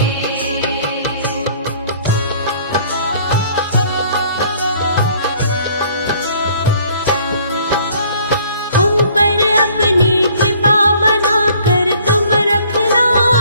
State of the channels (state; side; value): inverted; both; correlation -0.57